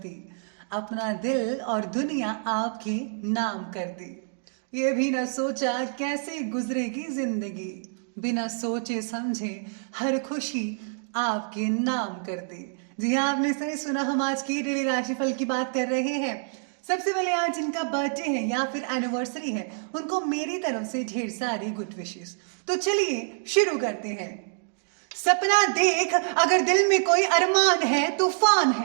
अपना दिल और दुनिया आपके नाम कर दी। ये भी न सोचा कैसे गुजरेगी जिंदगी, बिना सोचे समझे हर खुशी आपके नाम कर दी। जी हाँ, आपने सही सुना। हम आज की डेली राशिफल की बात कर रहे हैं। सबसे पहले आज जिनका बर्थडे है या फिर एनिवर्सरी है, उनको मेरी तरफ से ढेर सारी गुड विशेस। तो चलिए शुरू करते हैं। सपना देख, अगर दिल में कोई अरमान है, तूफान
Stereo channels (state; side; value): silent; left; digital silence